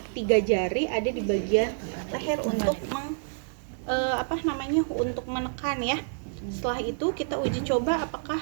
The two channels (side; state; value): left; silent; digital silence